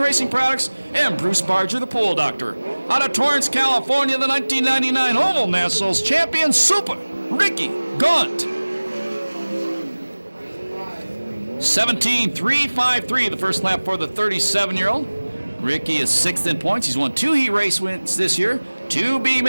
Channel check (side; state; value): both; inverted; correlation -1.00